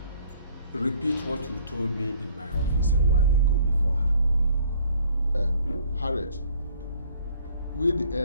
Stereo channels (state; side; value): inverted; both; correlation -0.59